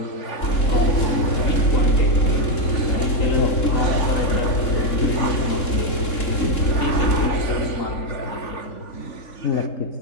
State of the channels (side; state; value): right; late; 3.7 ms